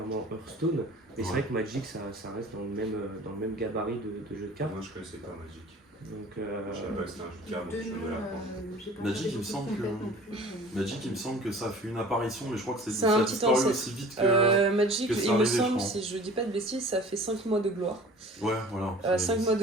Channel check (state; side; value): normal; both; correlation 0.45